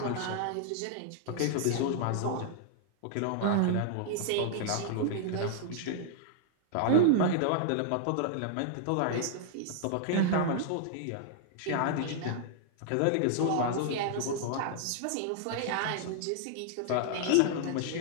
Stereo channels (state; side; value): different; both; correlation -0.01